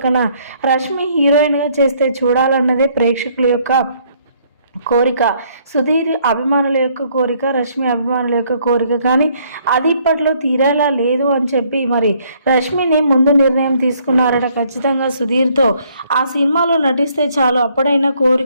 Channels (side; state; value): both; inverted; correlation -0.65